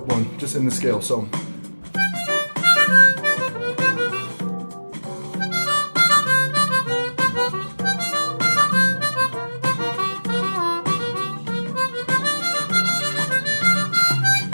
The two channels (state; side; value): inverted; both; correlation -1.00